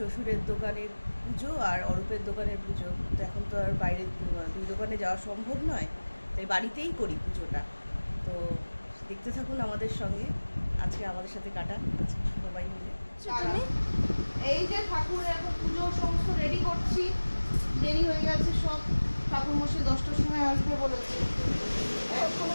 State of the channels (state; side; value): inverted; both; correlation -1.00